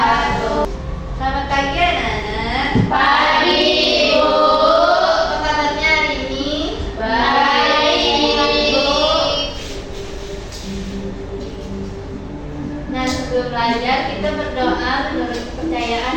Selamat pagi anak-anak. Pagi, Ibu. Apa kabarnya hari ini? Baik. Nah, sebelum belajar kita berdoa menurut kepercayaan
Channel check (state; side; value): identical; both; correlation 1.00